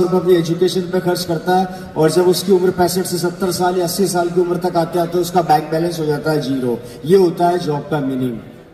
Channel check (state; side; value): identical; both; correlation 1.00